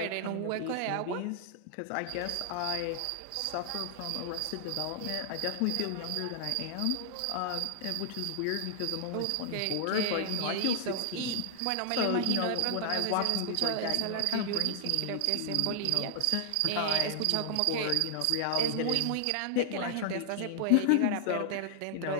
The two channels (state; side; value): different; both; correlation 0.00